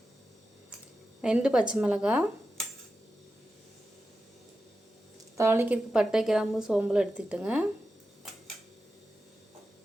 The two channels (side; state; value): both; normal; correlation 0.91